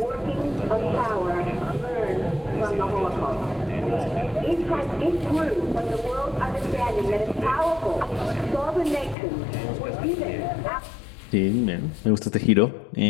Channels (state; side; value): drops out; right; at 9.2 s